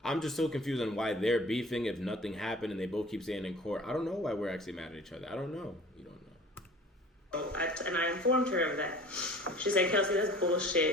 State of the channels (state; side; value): normal; both; correlation 0.45